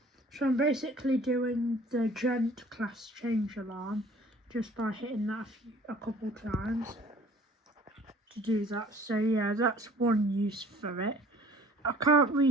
So I'm basically doing the Gent class change alarm just by hitting that a couple times to do that. So yeah, that's one use for it. I can't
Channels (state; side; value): normal; both; correlation 0.52